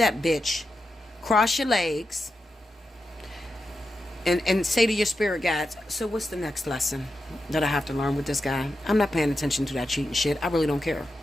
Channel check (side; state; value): both; normal; correlation 0.89